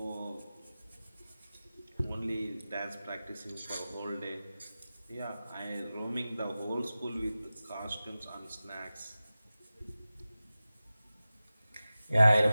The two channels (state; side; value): inverted; both; correlation -0.96